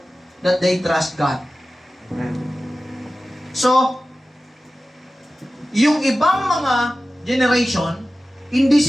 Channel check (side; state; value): both; normal; correlation 0.95